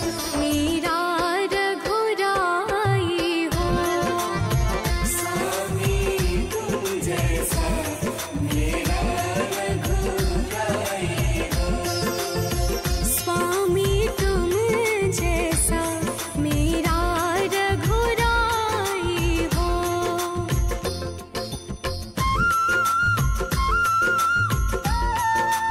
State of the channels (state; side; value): identical; both; correlation 1.00